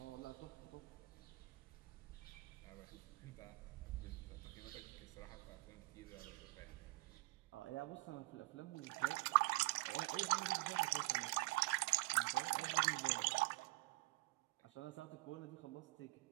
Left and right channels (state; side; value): quieter; left; 25.2 dB